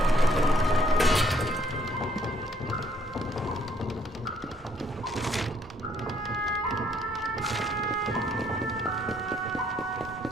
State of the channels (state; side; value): normal; both; correlation 0.65